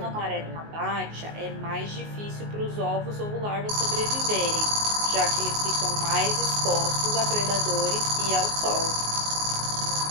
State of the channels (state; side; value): late; left; 19 ms